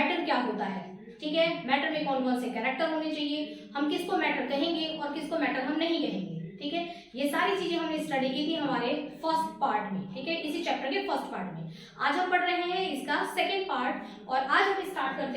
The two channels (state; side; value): identical; both; correlation 1.00